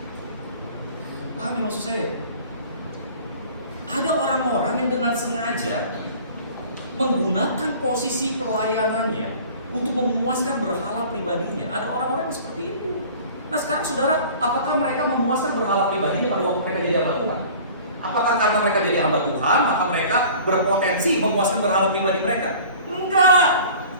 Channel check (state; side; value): inverted; both; correlation -0.45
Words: Paham ya maksud saya? Ada orang-orang yang dengan sengaja menggunakan posisi pelayanannya untuk memuaskan berhala pribadinya. Ada orang-orang yang seperti itu. Nah sekarang saudara, apakah mereka memuaskan berhala pribadinya pada waktu mereka jadi hamba Tuhan? Apakah karena mereka jadi hamba Tuhan, maka mereka berpotensi memuaskan berhala pribadi mereka? Enggak.